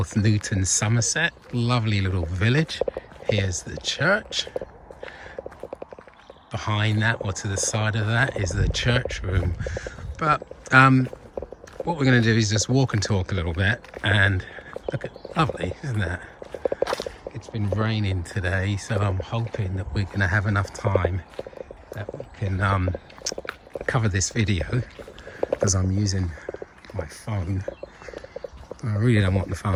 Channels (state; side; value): identical; both; correlation 1.00